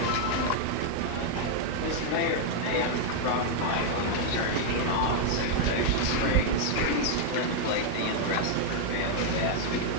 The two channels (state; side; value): different; both; correlation 0.00